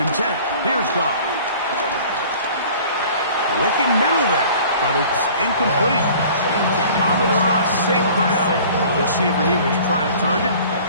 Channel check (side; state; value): both; inverted; correlation -0.47